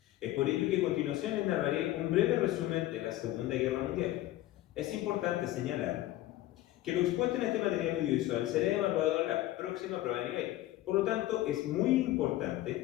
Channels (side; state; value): right; quieter; 15.4 dB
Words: Es por ello que a continuación les narraré un breve resumen de la Segunda Guerra Mundial. Es importante señalar que lo expuesto en este material audiovisual será evaluado en la próxima prueba de nivel. Por lo tanto, es muy